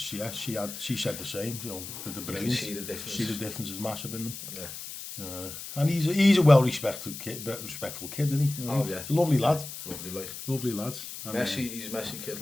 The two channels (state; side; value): noise; left; hiss, 10 dB below the sound